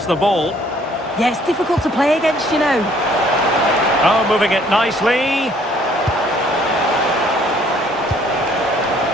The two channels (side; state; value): both; normal; correlation 0.61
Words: the ball. Yeah, it's difficult to play against, you know. Oh, moving it nicely.